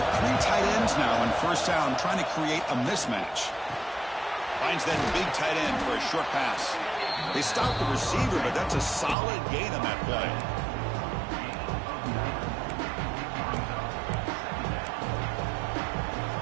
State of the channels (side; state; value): left; drops out; at 9.2 s